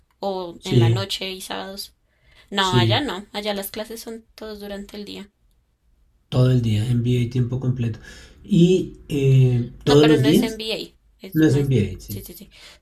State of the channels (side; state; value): both; identical; correlation 1.00